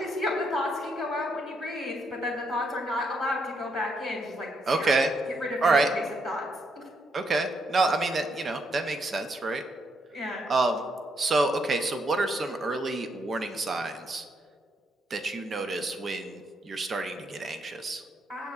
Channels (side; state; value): both; normal; correlation 0.76